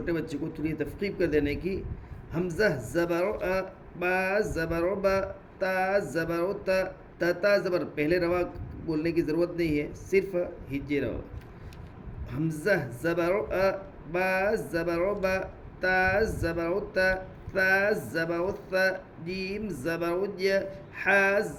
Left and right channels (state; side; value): identical; both; correlation 1.00